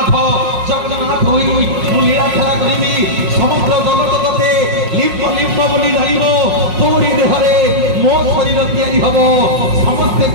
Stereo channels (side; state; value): left; late; 5.5 ms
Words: ଜଗନ୍ନାଥ ହୋଇ ମୁଁ ଲୀଳାଖେଳା କରିବି ସମଗ୍ର ଜଗତ ତତେ ଲିମ୍ବ ଲିମ୍ବ ବୋଲି ଜାଣିବ ତୋରି ଦେହରେ ମୋ ଶରୀର ତିଆରି ହବ ସମସ୍ତେ